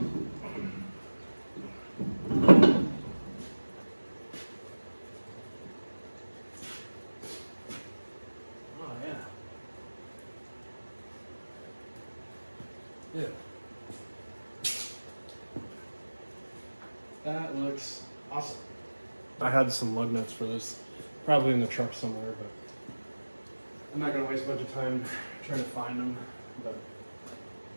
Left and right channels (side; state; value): both; inverted; correlation -1.00